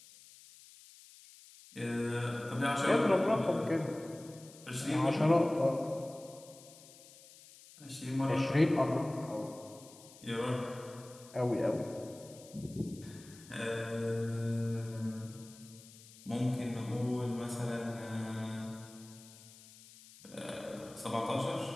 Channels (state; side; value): noise; left; hiss, 21 dB below the sound